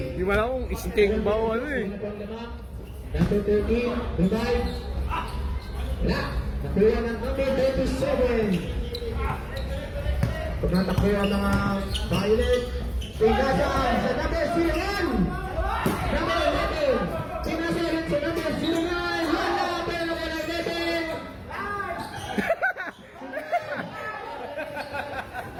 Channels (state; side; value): identical; both; correlation 1.00